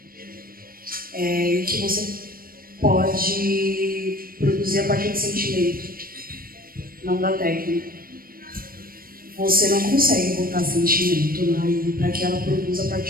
E que você pode produzir a partir de sentimento, não da técnica. Você não consegue botar sentimento aí para que ela produza a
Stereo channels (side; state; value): left; late; 0.42 ms